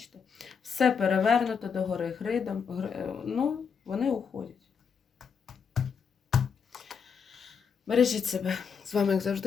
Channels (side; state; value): right; quieter; 6.4 dB